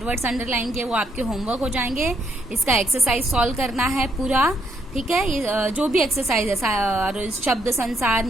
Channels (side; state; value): both; normal; correlation 0.74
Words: वर्ड्स अंडरलाइन किए वो आपके होमवर्क हो जाएंगे। इसका एक्सरसाइज सॉल्व करना है पूरा। ठीक है, ये जो भी एक्सरसाइज है, शब्द संसार,